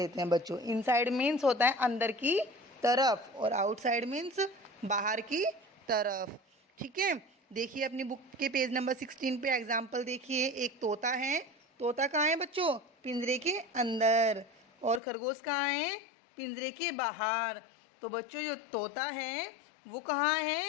हैं बच्चों। इनसाइड मीन्स होता है अंदर की तरफ और आउटसाइड मीन्स बाहर की तरफ। ठीक है, देखिए अपनी बुक के पेज नंबर 16 पे एग्जाम्पल देखिए। एक तोता है। तोता कहाँ है बच्चों? पिंजरे के अंदर। और खरगोश कहाँ है? पिंजरे के बाहर। तो बच्चों, जो तोता है वो कहाँ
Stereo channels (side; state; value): right; drops out; at 15.0 s